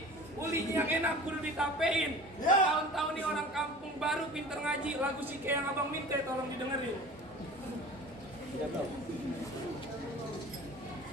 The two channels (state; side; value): normal; both; correlation 0.40